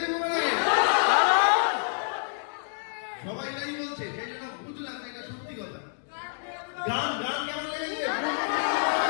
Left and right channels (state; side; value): silent; right; digital silence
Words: তোমাদের? সবাই তাই বলছে, সেই জন্য বুঝলাম এটা সত্যি কথা। গান গান কেমন লেগেছে?